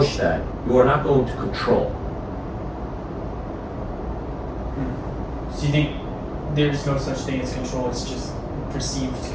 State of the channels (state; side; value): identical; both; correlation 1.00